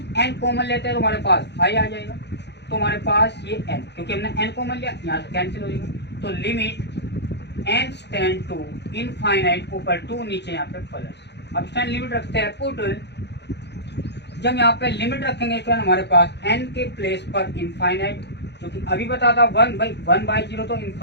n कॉमन लेते हैं तो हमारे पास i आ जाएगा, तो हमारे पास ये n, क्योंकि हमने n कॉमन लिया यहाँ से कैंसिल हो जाएगा, तो limit n tend to infinite ऊपर 2 नीचे यहाँ पे प्लस। अब स्टैंड लिमिट रखते हैं पुट, जब यहाँ पे लिमिट रखेंगे स्टूडेंट हमारे पास n के प्लेस पर इनफाइनाइट, जो कि अभी बता था 1/0 तो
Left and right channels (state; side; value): late; right; 0.50 ms